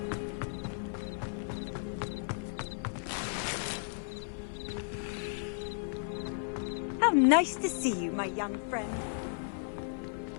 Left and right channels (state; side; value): silent; right; 55 dB below the other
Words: How nice to see you, my young friend.